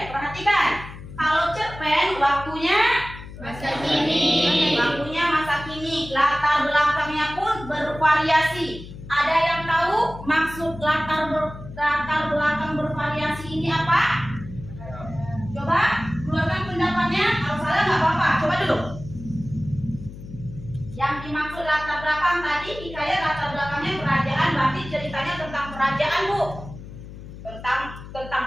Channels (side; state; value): left; noise; hum, 14 dB below the sound